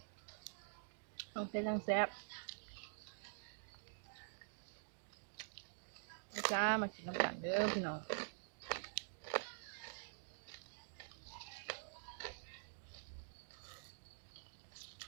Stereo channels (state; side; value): silent; left; digital silence